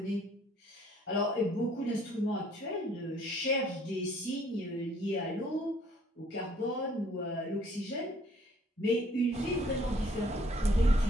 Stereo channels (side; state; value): both; normal; correlation 0.61